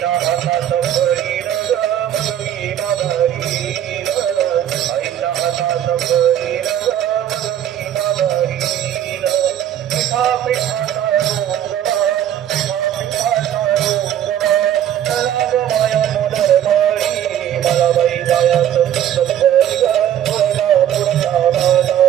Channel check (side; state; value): left; quieter; 10.8 dB